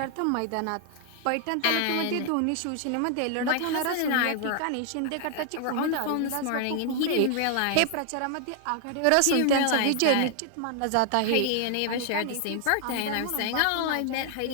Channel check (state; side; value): different; both; correlation 0.00